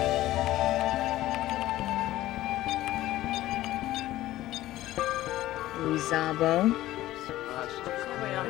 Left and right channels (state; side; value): quieter; right; 15.4 dB